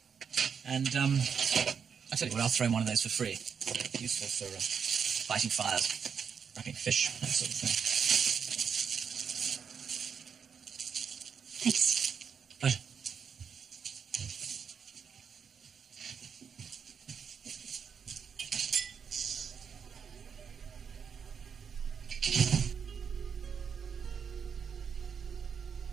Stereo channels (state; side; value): quieter; left; 6.8 dB